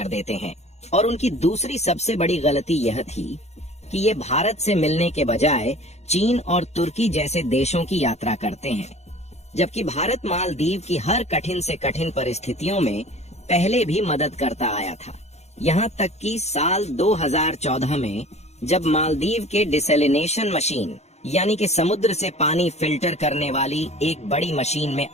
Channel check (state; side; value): late; right; 0.32 ms